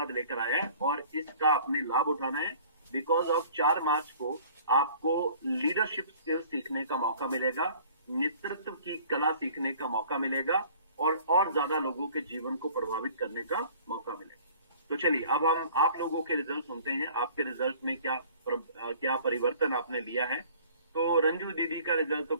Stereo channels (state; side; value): inverted; both; correlation -0.50